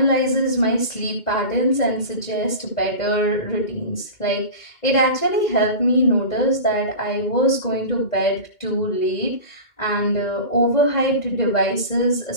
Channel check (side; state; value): right; late; 2.1 ms